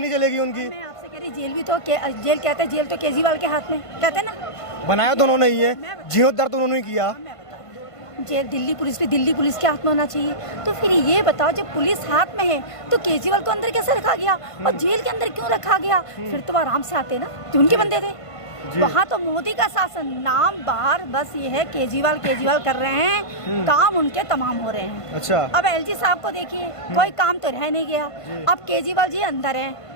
चलेगी उनकी? मैं आपसे कह रही जेल भी तो जेल कहते हैं, जेल तो केजरीवाल के हाथ में, कहते हैं ना। बनाया तो उन्होंने ही है, जीर्णोद्धार तो उन्होंने ही किया। जेल दिल्ली पुलिस के हाथ में होना चाहिए। तो फिर ये बताओ जब पुलिस हाथ में है तो केजरीवाल को अंदर कैसे रखा गया और जेल के अंदर क्यों रखा गया? फिर तो आराम से आते ना, जो उनके बंदे थे। वहाँ तो मोदी का शासन, नाम बाहर बस ये है केजरीवाल कर रहे हैं, काम उनके तमाम हो रहे हैं। अच्छा, अब LG साहब को देखिए, कोई काम तो रह नहीं गया। अब केजरीवाल जी अंदर हैं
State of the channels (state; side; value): late; right; 1.5 ms